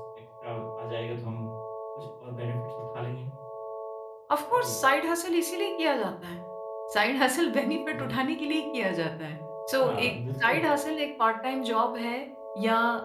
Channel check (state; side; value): identical; both; correlation 1.00